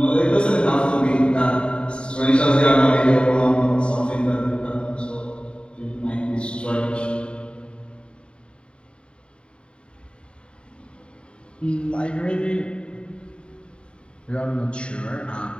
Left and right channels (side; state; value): right; late; 0.054 ms